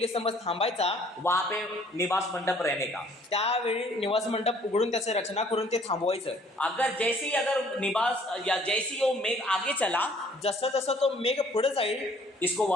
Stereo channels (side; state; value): both; normal; correlation 0.59